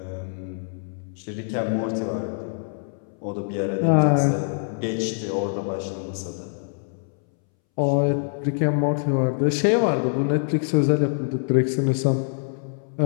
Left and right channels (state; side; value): silent; right; 62 dB below the other